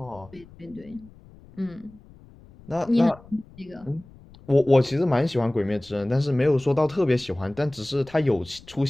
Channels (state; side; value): noise; left; rumble, 23 dB below the sound